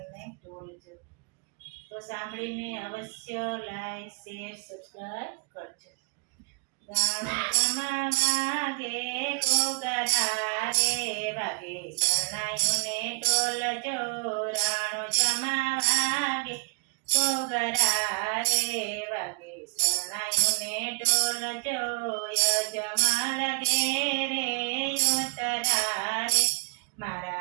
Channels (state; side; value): quieter; left; 30.8 dB